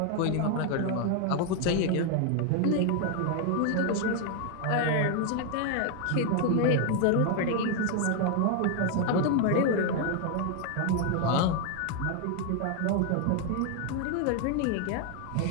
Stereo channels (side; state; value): both; different; correlation 0.00